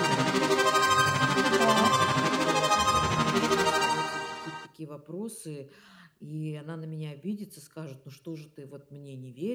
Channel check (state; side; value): identical; both; correlation 1.00